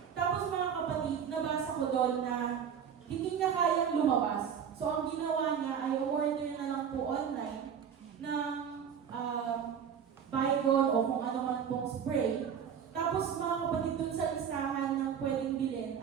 Tapos mga kapatid, nabasa ko doon na hindi niya kayang lumabas. So ang ginawa niya ay order na lang po online ng Baygon o kung ano man pong spray. Tapos mga kapatid, doon sa listahan ng pwedeng bilhin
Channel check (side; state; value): left; quieter; 7.9 dB